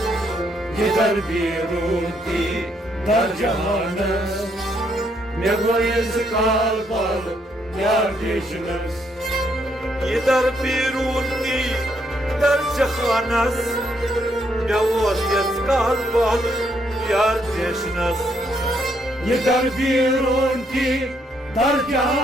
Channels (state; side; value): normal; both; correlation 0.73